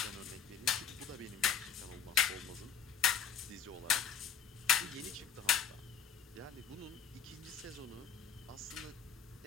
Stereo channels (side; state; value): right; quieter; 7.5 dB